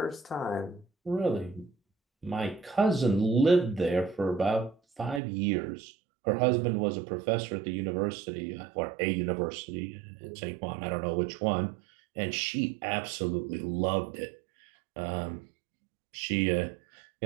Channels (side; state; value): left; drops out; at 5.2 s